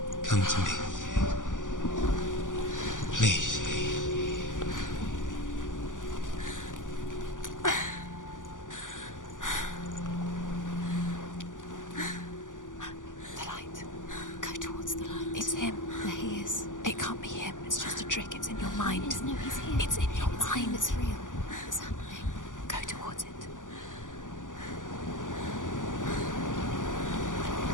Come to me. Please. The light. Go towards the light. It's him. There he is. It can't be him. It's just a trick. It's in your mind. No, he's here. It's in your It's him. mind. It's real. It's happening. Go towards it.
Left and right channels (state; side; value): late; right; 0.87 ms